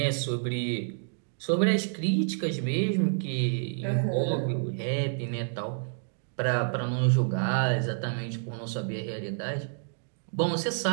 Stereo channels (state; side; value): silent; left; digital silence